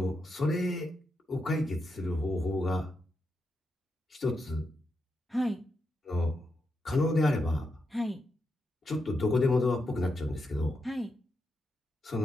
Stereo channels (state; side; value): normal; both; correlation 0.85